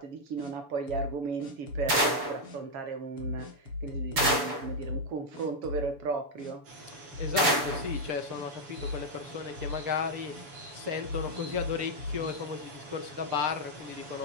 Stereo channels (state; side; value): late; left; 7.0 ms